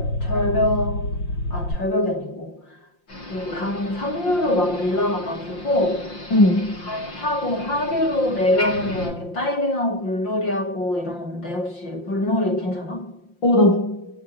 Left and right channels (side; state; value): right; late; 5.7 ms